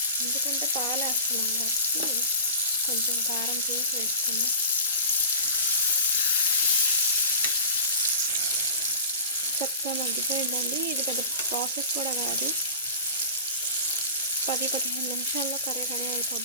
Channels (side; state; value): both; inverted; correlation -0.35